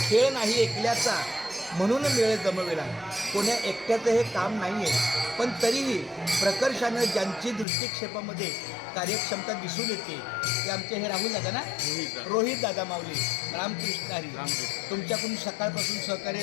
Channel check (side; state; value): right; drops out; at 7.7 s